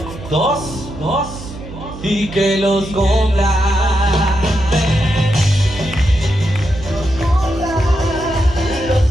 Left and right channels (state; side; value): noise; right; hum, 13 dB below the sound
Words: Dos, y que los cumpla.